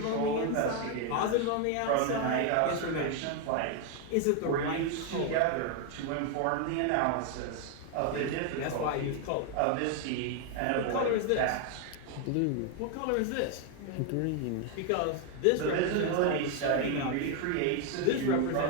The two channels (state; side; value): different; both; correlation 0.01